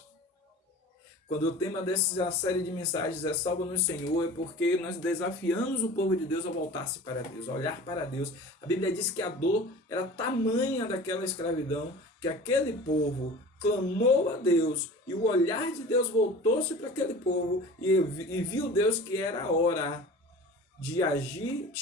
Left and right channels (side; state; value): both; normal; correlation 0.40